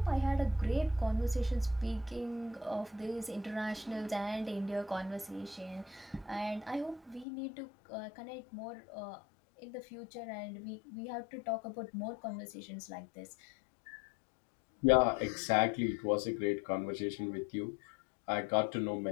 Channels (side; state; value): right; drops out; at 7.2 s